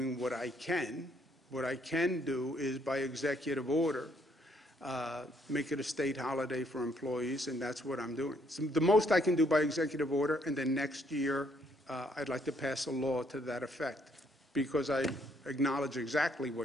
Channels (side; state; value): both; normal; correlation 0.69